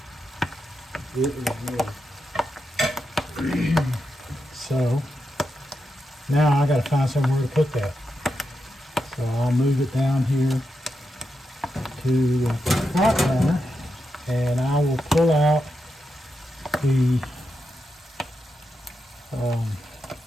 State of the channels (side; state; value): both; normal; correlation 0.87